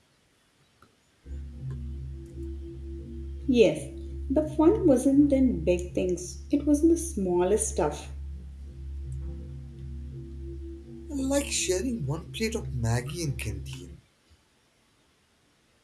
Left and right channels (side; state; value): both; identical; correlation 1.00